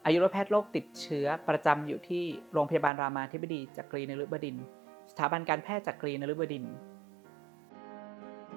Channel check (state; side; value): drops out; left; at 2.9 s